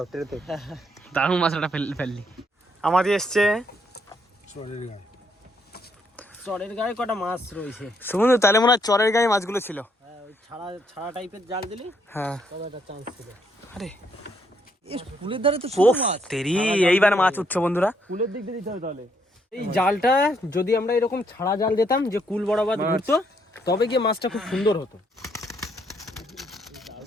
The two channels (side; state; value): both; normal; correlation 0.72